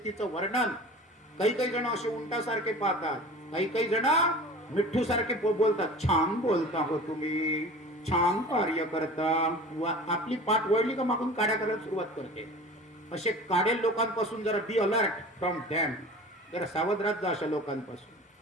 वर्णन काही काही जण असे उंटासारखे पाहतात, काही काही जण मिठ्ठू सारखे बोलतात. छान बोलता हो तुम्ही, छान कार्य करता. आपली पाठ वळली का मागून काड्या करायला सुरुवात करते. असे काडेल लोकांपासून जरा बी अलर्ट फ्रॉम दॅम, जरा सावध राहत जा अशा लोकांपासून.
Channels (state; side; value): normal; both; correlation 0.38